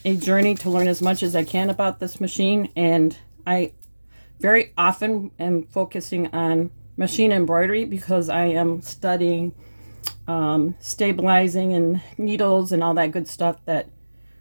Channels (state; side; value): inverted; both; correlation -1.00